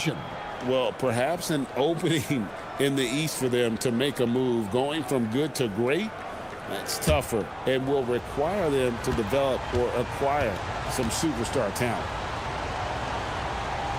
Well, perhaps an opening in the East for them to make a move. Going from good to great, that's tougher and will require them to develop or acquire some superstar talent.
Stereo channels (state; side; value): identical; both; correlation 1.00